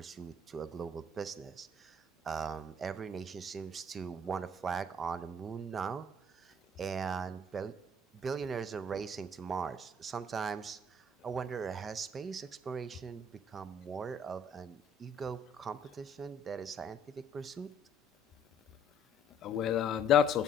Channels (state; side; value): normal; both; correlation 0.59